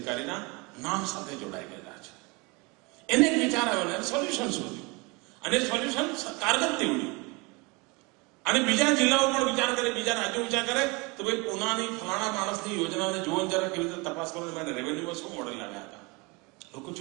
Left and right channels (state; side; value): quieter; left; 27.4 dB